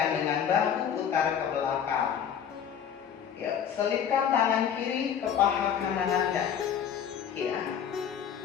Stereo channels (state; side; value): quieter; right; 8.4 dB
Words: dengan bahu, putar ke belakang. Ya, selipkan tangan kiri ke paha kanan Anda. Ya,